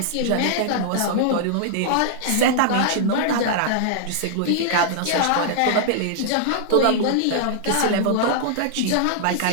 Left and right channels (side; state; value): both; different; correlation -0.01